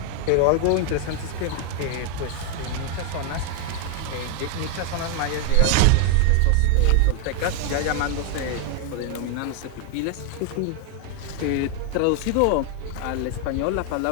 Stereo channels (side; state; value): both; different; correlation 0.01